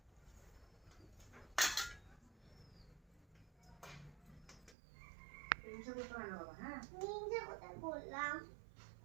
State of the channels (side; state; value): left; drops out; at 4.8 s